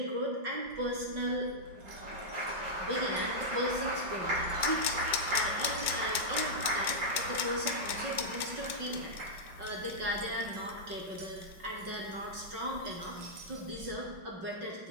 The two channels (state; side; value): late; left; 4.8 ms